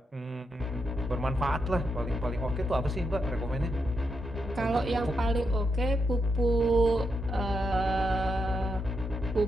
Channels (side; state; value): both; normal; correlation 0.83